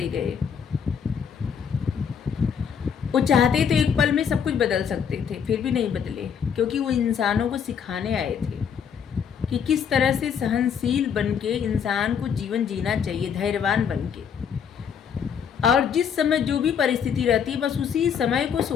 गए। वो चाहते तो एक पल में सब कुछ बदल सकते थे, फिर भी नहीं बदले, क्योंकि वो इंसानों को सिखाने आए थे कि किस तरह से सहनशील बनके इंसान को जीवन जीना चाहिए, धैर्यवान बनके। और जिस समय जो भी परिस्थिति रहती है बस उसी समय को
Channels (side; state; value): right; quieter; 7.4 dB